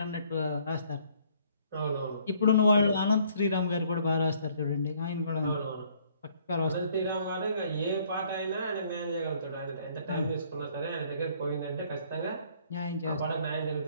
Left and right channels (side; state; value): both; inverted; correlation -0.62